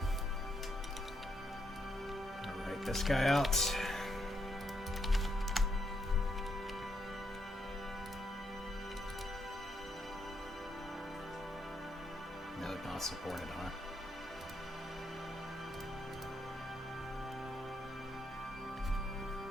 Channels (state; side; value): normal; both; correlation 0.77